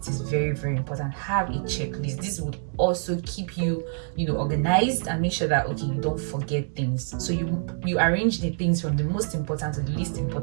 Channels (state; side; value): silent; left; 61 dB below the other